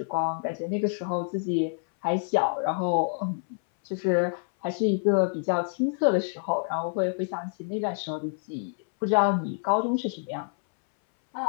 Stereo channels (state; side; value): silent; right; 60 dB below the other